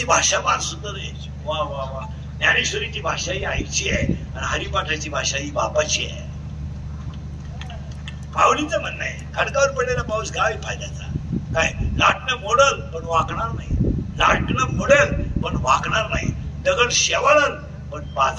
भाषा फार सुंदर आहे. वा वा वा. ज्ञानेश्वरीची भाषा ही आईची आहे आणि हरिपाठाची भाषा ही बापाची आहे. माऊलीचं म्हणणं आहे खडकावर पडलेला पाऊस काय फायद्याचा. काय लाटणं मोडल पण वाकणार नाही. लाटणं मोडेल पण वाकणार नाही, दगड शेवाळल पण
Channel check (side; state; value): both; identical; correlation 1.00